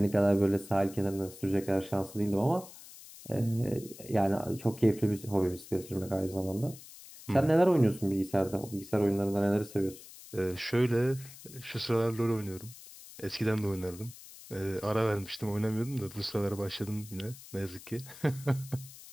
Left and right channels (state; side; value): noise; left; hiss, 17 dB below the sound